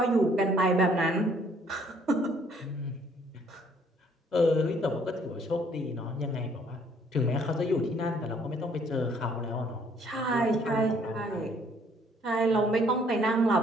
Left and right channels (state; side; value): normal; both; correlation 0.62